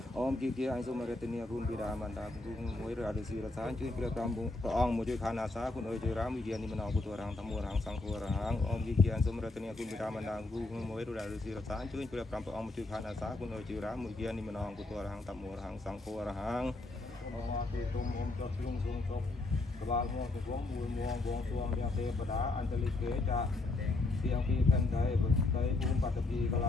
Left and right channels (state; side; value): quieter; right; 3.1 dB